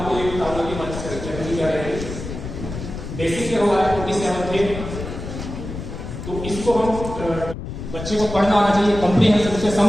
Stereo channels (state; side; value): noise; left; rumble, 8 dB below the sound